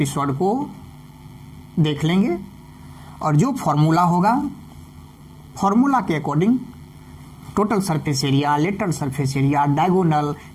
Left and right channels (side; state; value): both; identical; correlation 1.00